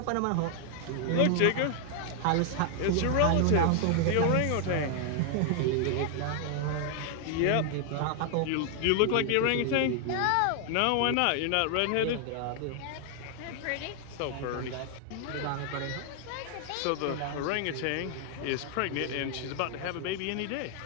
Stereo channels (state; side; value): different; both; correlation 0.00